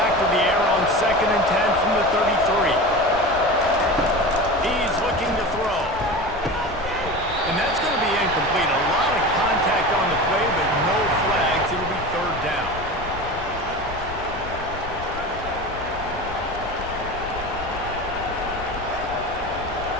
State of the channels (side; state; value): left; noise; rumble, 12 dB below the sound